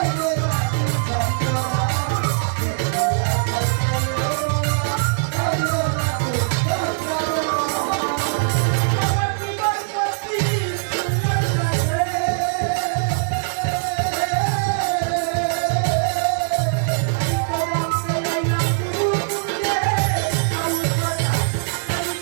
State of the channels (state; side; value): silent; left; digital silence